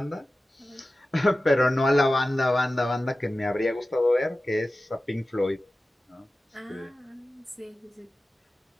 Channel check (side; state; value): both; normal; correlation 0.95